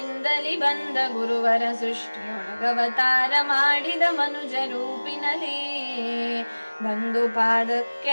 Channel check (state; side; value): inverted; both; correlation -1.00